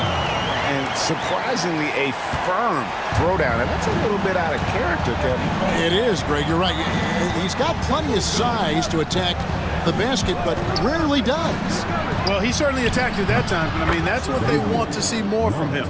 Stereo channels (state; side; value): identical; both; correlation 1.00